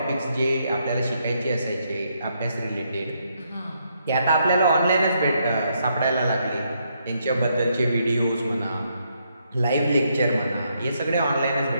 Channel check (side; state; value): both; inverted; correlation -0.76